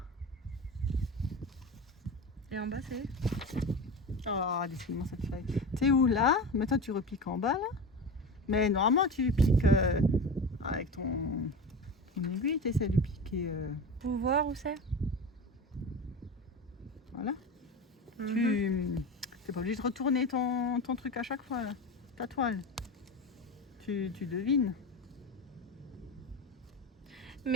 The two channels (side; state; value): both; normal; correlation 0.27